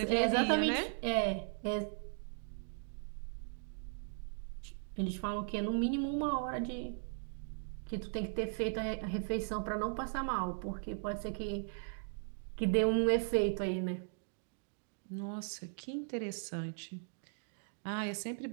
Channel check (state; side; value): silent; left; digital silence